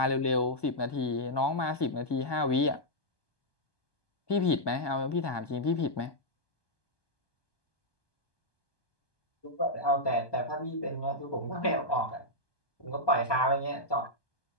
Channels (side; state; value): right; late; 1.2 ms